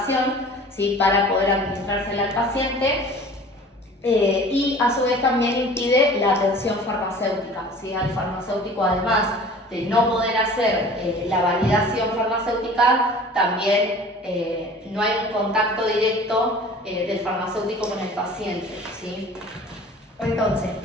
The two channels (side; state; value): both; normal; correlation 0.44